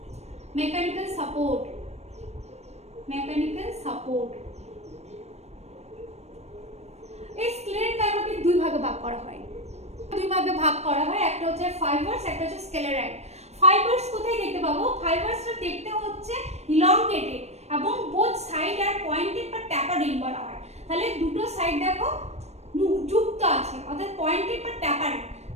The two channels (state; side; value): late; left; 0.31 ms